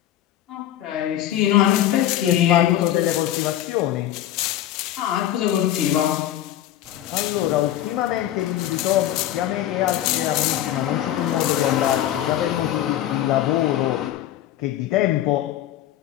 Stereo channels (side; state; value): right; quieter; 12.4 dB